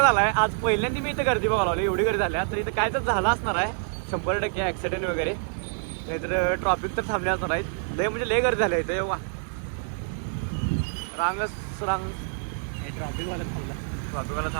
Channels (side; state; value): left; silent; 60 dB below the other